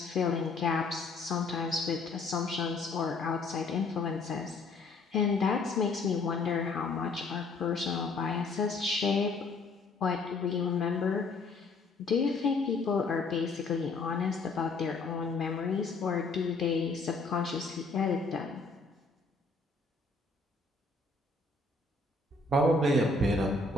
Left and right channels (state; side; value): quieter; right; 3.7 dB